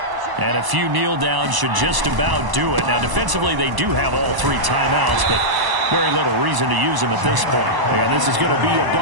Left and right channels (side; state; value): left; late; 1.0 ms